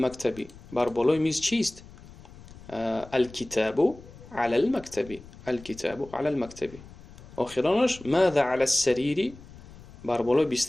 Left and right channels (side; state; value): left; noise; rumble, 19 dB below the sound